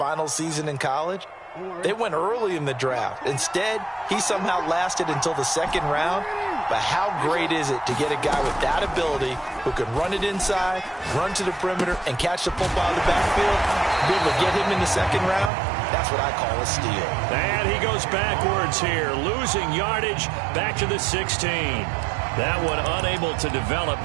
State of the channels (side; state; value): left; drops out; at 15.5 s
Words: season in college, they went early in the draft. Instead, he somehow lasted until the 2nd round. But how great is it to get a guy with that ability who can run it inside, run to the perimeter, and catch the football in the backfield? Be able to get him in the 2nd round, that's what I call a steal. And he goes backwards here, losing yardage back to the 16. That one unable to develop,